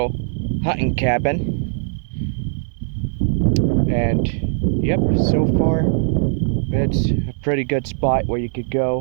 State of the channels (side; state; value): left; silent; digital silence